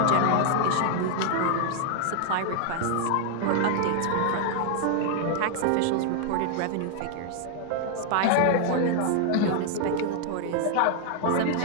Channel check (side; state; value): both; different; correlation 0.00